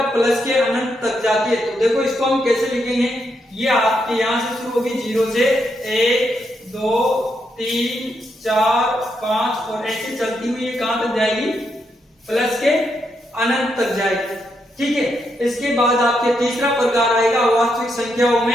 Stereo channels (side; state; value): both; normal; correlation 0.80